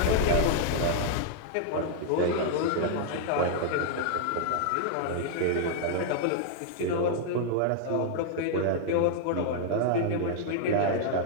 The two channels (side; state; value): both; different; correlation -0.01